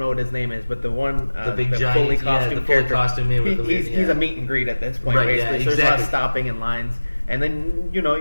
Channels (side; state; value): both; inverted; correlation -1.00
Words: what his name is, but the one the big giant, fully costume the fully character. costume man with the He's a meet and greet at this point, Right, basically. yeah, So there's a lot of exactly. stopping in lines. And then, you